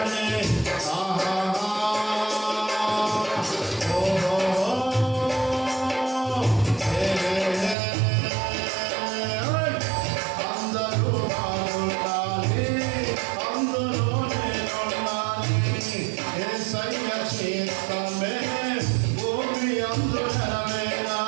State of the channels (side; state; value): left; drops out; at 7.8 s